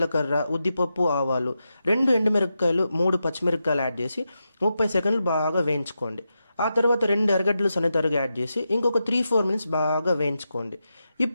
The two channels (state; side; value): inverted; both; correlation -0.88